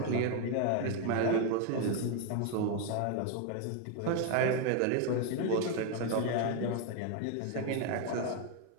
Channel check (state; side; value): different; both; correlation 0.01